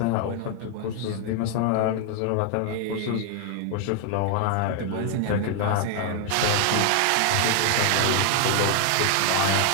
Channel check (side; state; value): both; different; correlation 0.00